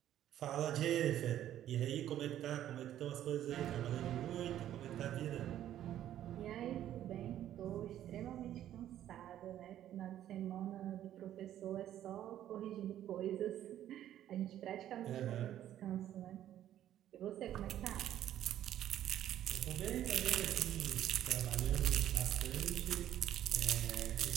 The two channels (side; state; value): left; quieter; 11.8 dB